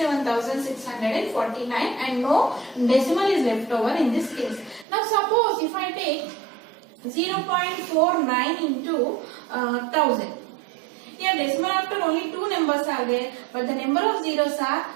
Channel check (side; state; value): left; drops out; at 4.9 s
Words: and no decimal is left over in this case. Now suppose if I take 0.49 into 1000. Here decimal after only 2 numbers are there, but the number of zeros are